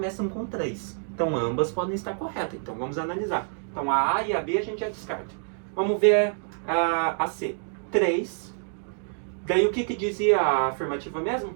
com 3. Então ambas podem estar corretas. Então vamos analisar. Então a A e a B a gente já descarta. Vamos ver a C. 3. Daí o que dizia a afirmativa mesmo?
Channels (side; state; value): left; silent; digital silence